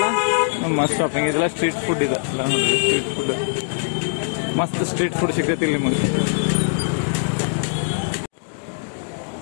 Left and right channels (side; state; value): right; silent; digital silence